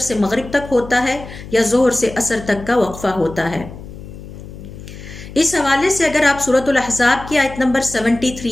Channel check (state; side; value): noise; left; hum, 14 dB below the sound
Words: مغرب تک ہوتا ہے یا ظہر سے عصر تک کا وقفہ ہوتا ہے۔ اس حوالے سے اگر آپ سورۃ الاحزاب کی آیت نمبر 73